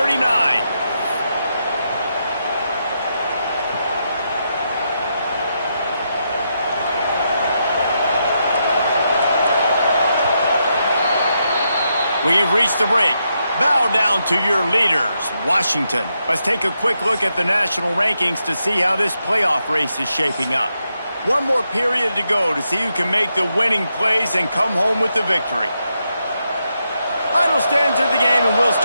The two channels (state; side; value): inverted; both; correlation -0.82